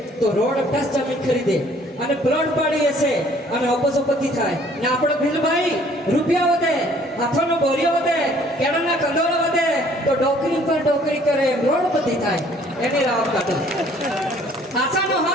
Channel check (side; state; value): both; normal; correlation 0.58